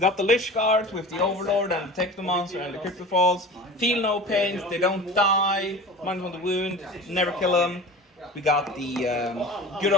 the Lich Guards with the Overlord and the Technomancer and the Crypto Falls. Feel no pains, they don't die. -1 the wound, never kill them. We got the good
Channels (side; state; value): both; normal; correlation 0.36